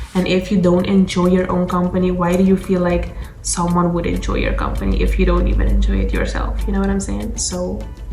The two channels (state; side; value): identical; both; correlation 1.00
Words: and if you don't enjoy your own company, why do you feel like someone would enjoy your company if you don't even enjoy it yourself? You know what I'm saying? So